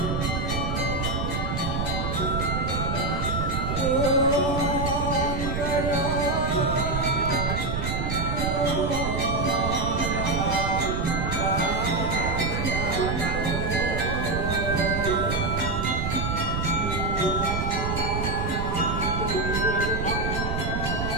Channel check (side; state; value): right; noise; rumble, 2 dB below the sound